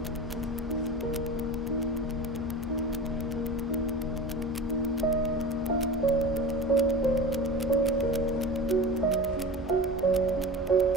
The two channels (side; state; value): both; normal; correlation 0.32